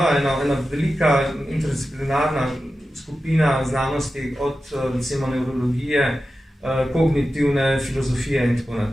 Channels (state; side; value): normal; both; correlation 0.93